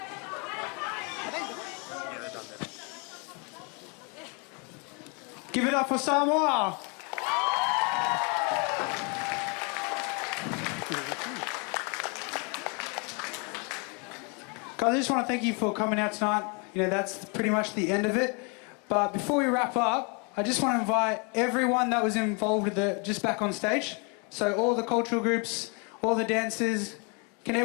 Give it up for Samoa. Guys, I just want to thank you for coming out tonight. You know, that's pretty much the end of it. But before we wrap up, I just want to invite everyone that was involved with it just back on stage. So all the cultural groups, all the dancers, can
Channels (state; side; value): quieter; right; 34.1 dB